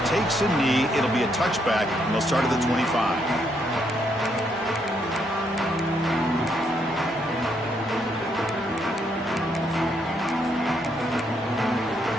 takes a knee. It'll be a touchback, and they'll start at the 25.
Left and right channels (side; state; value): both; normal; correlation 0.75